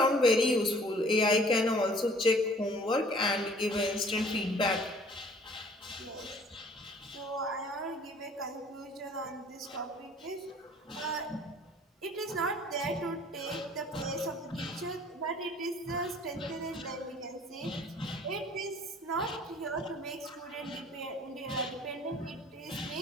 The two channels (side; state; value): both; normal; correlation 0.53